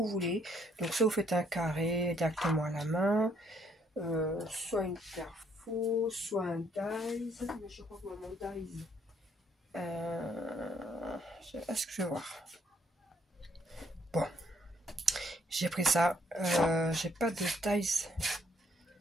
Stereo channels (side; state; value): both; normal; correlation 0.68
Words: voulez. Donc, soit vous faites un carré directement à la main, soit une perfo, soit un dies, mais je crois que mon dies, est-ce que je vais voir? Bon, j'ai pris ça. J'ai pas de taille